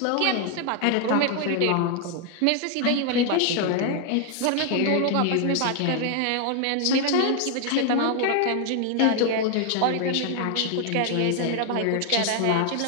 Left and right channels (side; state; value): both; different; correlation 0.00